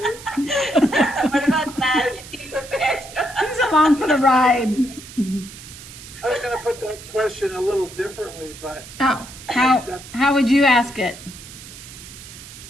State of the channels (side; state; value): right; noise; hiss, 16 dB below the sound